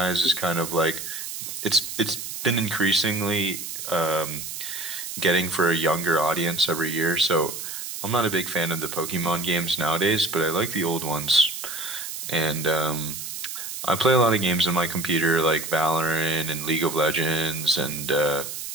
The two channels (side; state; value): right; noise; hiss, 7 dB below the sound